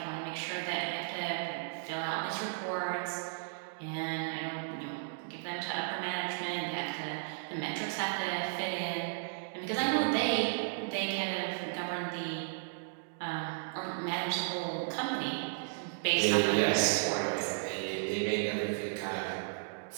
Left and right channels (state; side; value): silent; left; digital silence